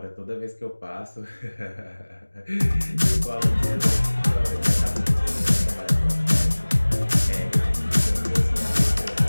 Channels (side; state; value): both; inverted; correlation -1.00